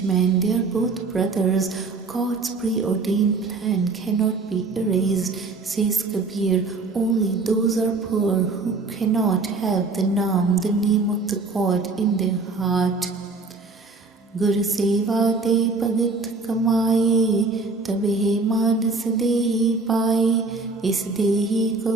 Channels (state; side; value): quieter; left; 3.8 dB